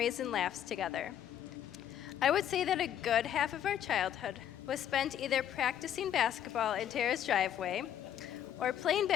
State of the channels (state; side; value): quieter; right; 10.2 dB